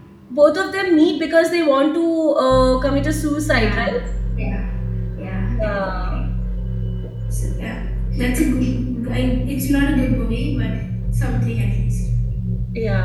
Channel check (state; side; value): identical; both; correlation 1.00